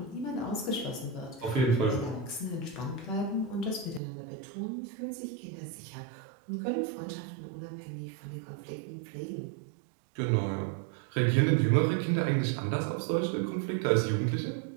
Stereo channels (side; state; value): left; drops out; at 4.0 s